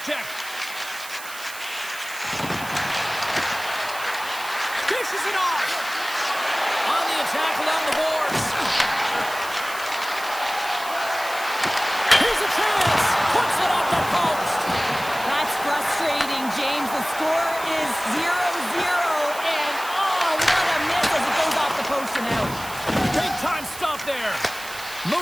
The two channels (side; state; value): right; noise; hiss, 13 dB below the sound